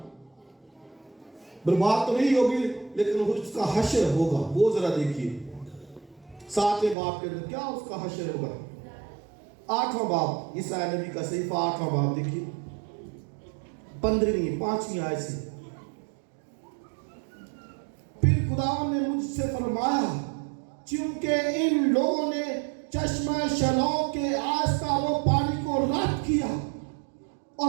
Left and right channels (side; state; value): left; drops out; at 7.0 s